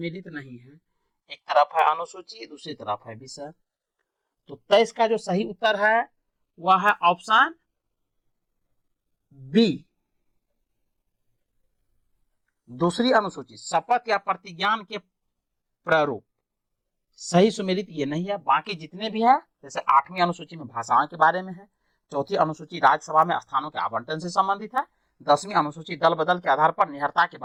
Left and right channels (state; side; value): identical; both; correlation 1.00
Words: नहीं है? एक तरफ है अनुसूची, दूसरी तरफ है विषय। तो 23 का जो सही उत्तर है वह है ऑप्शन बी, दूसरी अनुसूची, शपथ या प्रतिज्ञान के प्रारूप। सही सुमेलित ये नहीं है। बाकी जितने भी है, जैसे 8वीं अनुसूची में भाषाओं के बारे में है, 4थी अनुसूची राज्यसभा में स्थानों के आवंटन से संबंधित है, 10वीं अनुसूची दल बदल के आधार पर निहरता के